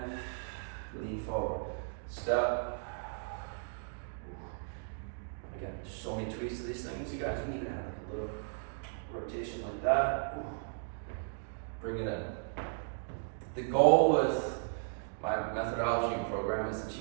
lean forward. Step. Again, so many tweaks to these things. You guys can even have a little rotation like that. Bring it in. The goal with my methodology and program is to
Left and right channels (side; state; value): left; silent; digital silence